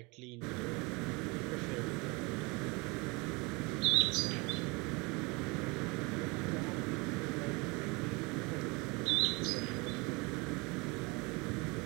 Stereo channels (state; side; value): quieter; left; 27.1 dB